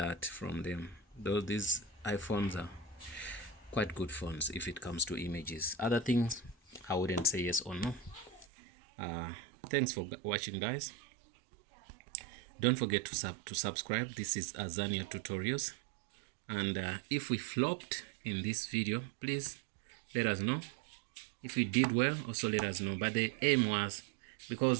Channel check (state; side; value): drops out; left; at 8.5 s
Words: from them. Though these iPhones are quite good phones if it comes to images. Other things, I wouldn't say yes or no. Thanks for watching, guys. Don't forget to subscribe. This is Azania Tutorials. And if we flopped in this video, please let us know. If we did well, also let us know. But the aim was,